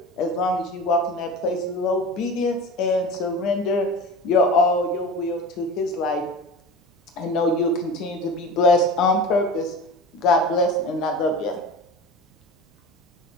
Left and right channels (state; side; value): normal; both; correlation 0.33